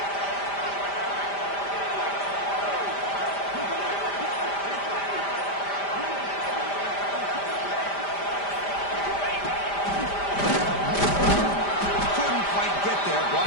Couldn't quite get there. Brought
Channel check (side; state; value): right; late; 5.0 ms